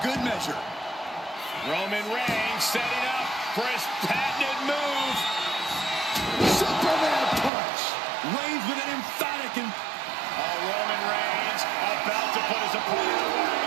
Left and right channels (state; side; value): drops out; left; at 7.5 s